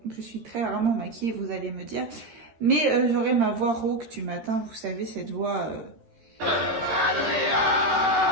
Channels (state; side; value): late; left; 13 ms